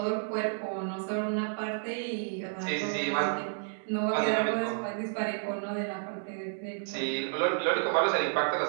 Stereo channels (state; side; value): silent; left; digital silence